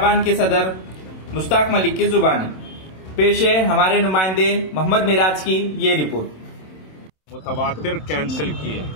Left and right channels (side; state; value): right; late; 27 ms